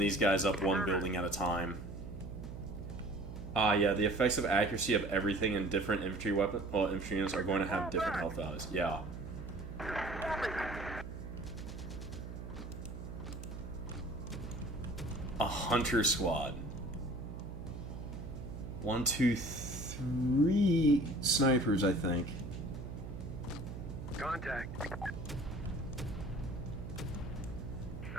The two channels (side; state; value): right; noise; hum, 9 dB below the sound